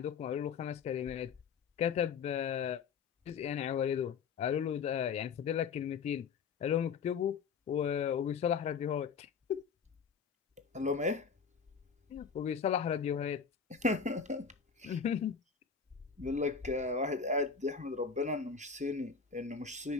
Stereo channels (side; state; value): right; quieter; 6.0 dB